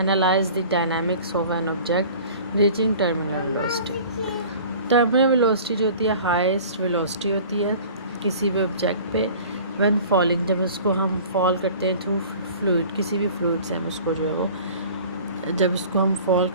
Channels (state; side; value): inverted; both; correlation -0.45